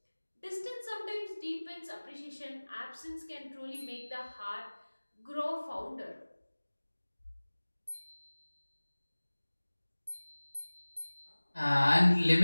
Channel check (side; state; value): both; inverted; correlation -1.00